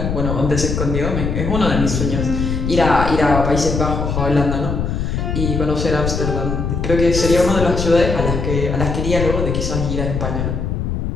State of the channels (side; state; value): left; noise; rumble, 2 dB below the sound